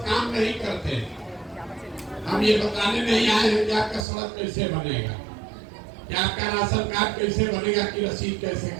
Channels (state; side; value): drops out; left; at 4.0 s